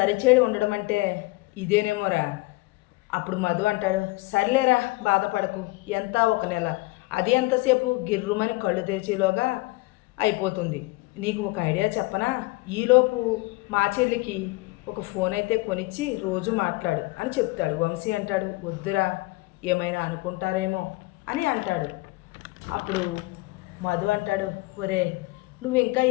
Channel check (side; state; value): right; quieter; 22.3 dB